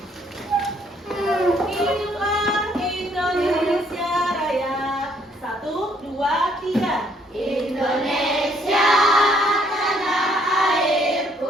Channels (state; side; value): normal; both; correlation 0.67